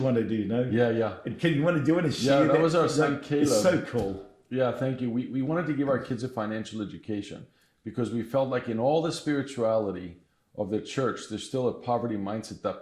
want to do, Yeah. and can you want to do it and share that was our son Caleb. It's so cool. Yeah, thank you. We wanted to give our kids a financial education because we felt like in all the spirituality of the church, there's still a poverty mindset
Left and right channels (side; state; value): both; identical; correlation 1.00